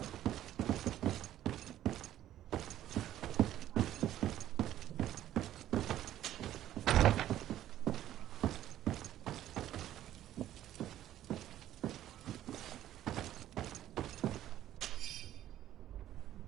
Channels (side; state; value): left; quieter; 12.5 dB